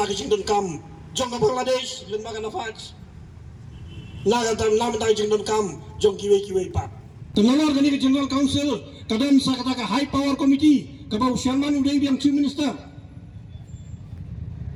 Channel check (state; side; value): identical; both; correlation 1.00